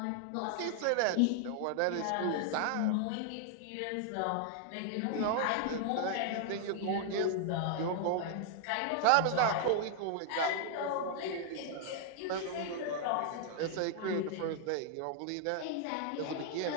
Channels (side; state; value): both; different; correlation 0.00